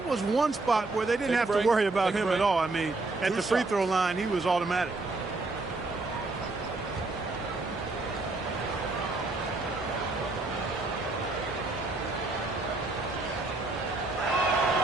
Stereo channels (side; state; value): left; quieter; 3.3 dB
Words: was one spot where they didn't have to worry about him at all. I mean, at the free throw line, he was automatic.